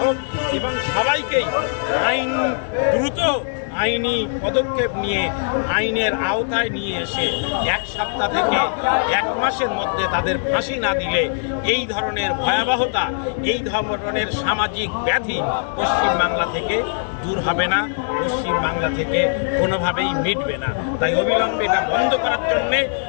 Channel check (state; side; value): silent; right; digital silence